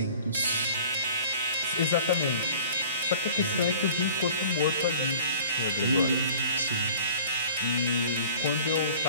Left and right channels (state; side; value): inverted; both; correlation -0.47